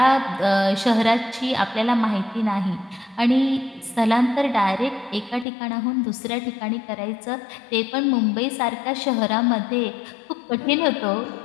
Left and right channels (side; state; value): right; drops out; at 5.5 s